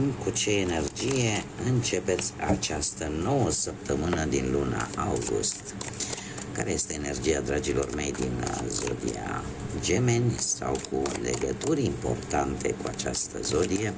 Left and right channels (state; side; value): identical; both; correlation 1.00